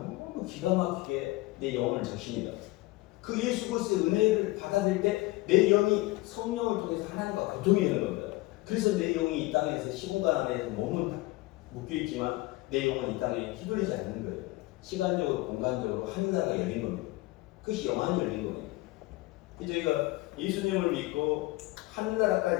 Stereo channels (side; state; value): right; quieter; 20.3 dB